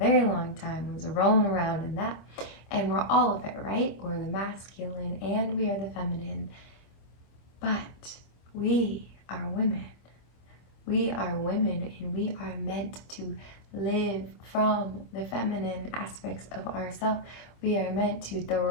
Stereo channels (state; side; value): late; right; 25 ms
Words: long time was rolling around in that. And we're all of it, right? We're the masculine and we are the feminine. But we are women. We are women and we are meant to live from the feminine aspects of ourselves. We are meant to